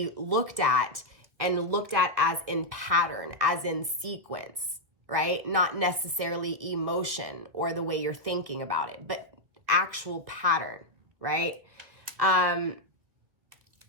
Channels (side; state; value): left; late; 2.0 ms